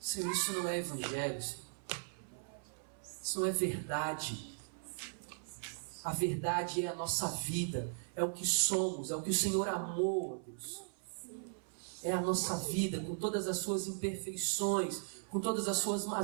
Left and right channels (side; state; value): left; silent; 52 dB below the other